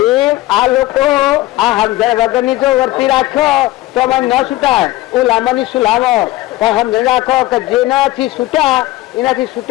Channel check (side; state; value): right; quieter; 17.0 dB